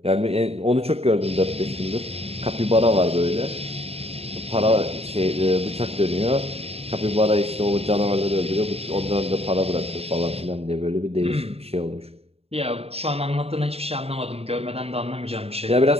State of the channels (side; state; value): left; late; 0.29 ms